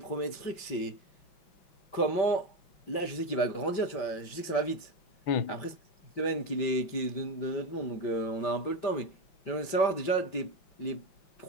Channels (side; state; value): right; late; 5.2 ms